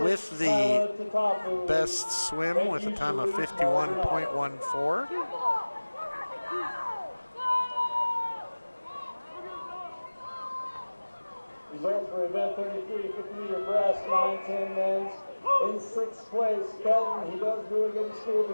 the best swim with a time of 51.14. Results for event 33, 50-meter breast, 9-10 men's. In 6th place, Kelton. He does really good in school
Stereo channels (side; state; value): both; inverted; correlation -1.00